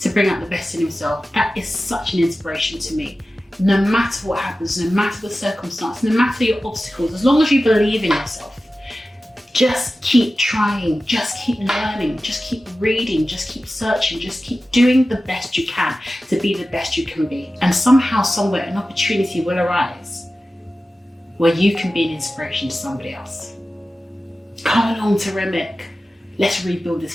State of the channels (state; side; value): normal; both; correlation 0.95